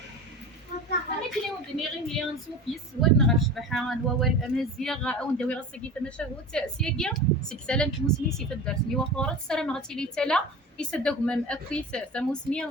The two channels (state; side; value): normal; both; correlation 0.32